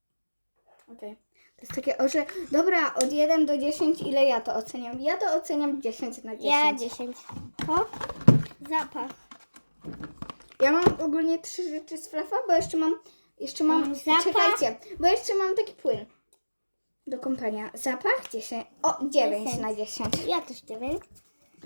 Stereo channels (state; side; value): inverted; both; correlation -1.00